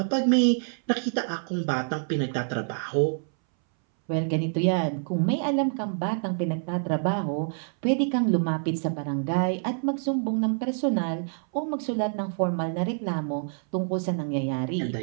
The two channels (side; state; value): left; silent; 60 dB below the other